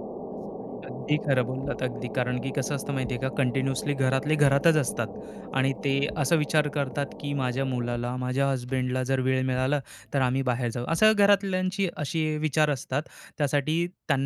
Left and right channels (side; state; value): both; identical; correlation 1.00